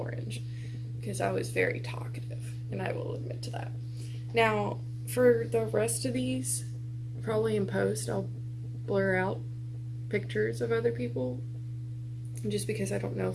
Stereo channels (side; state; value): both; identical; correlation 1.00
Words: because I was very talkative, and I will admit to that. Now, for the rest of these, probably in post, I'll blur out pictures of other people just because I don't know